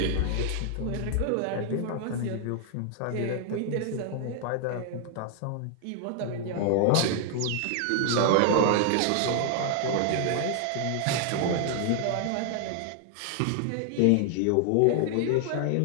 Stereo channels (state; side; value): different; both; correlation 0.00